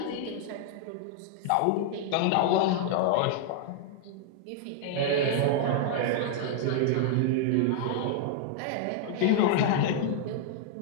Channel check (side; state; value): both; different; correlation -0.01